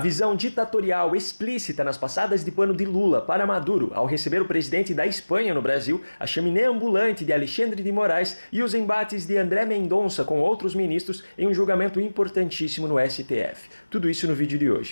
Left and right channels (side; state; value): both; inverted; correlation -1.00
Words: ditatorial explícita nas passadas de pano de Lula para Maduro ao receber o presidente da Espanha no Brasil, a chaminé ambulante de Alexandre de Moraes e os embates de André Mendonça com outros ministros em um julgamento importantíssimo no STF. Tudo isso no vídeo de